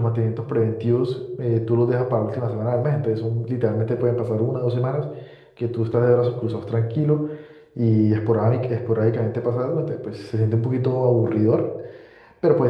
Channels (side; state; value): both; identical; correlation 1.00